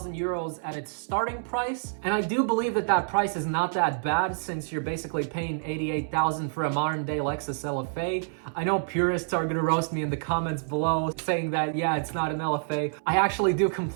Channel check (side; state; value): left; silent; 60 dB below the other